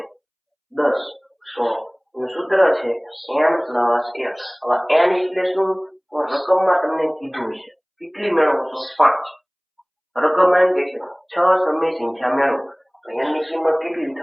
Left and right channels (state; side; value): identical; both; correlation 1.00